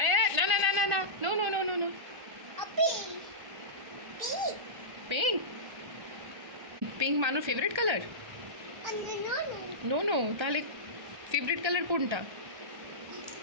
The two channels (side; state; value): left; late; 1.3 ms